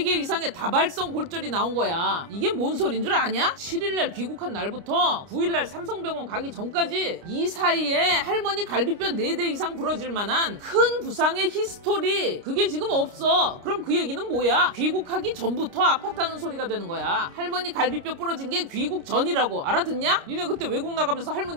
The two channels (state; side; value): late; left; 29 ms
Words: 이상의 다발성 골절이 나온 거야. 이게 뭔 소린 줄 아냐? 7일날 귀국한 날부터 9일날 삼성병원 가기 전까지 이 사이에 할머니 갈비뼈 4대 이상 부러질 만한 큰 부상의 히스토리 그게 지금 없어. 그럼 그 얘기는 뭐야? 귀국하기 전부터 아팠다는 소리가 되는 거야. 할머니 갈비뼈 부러진 게 귀국 전이라고. 알아듣냐? 니네 그때 외국 나가면서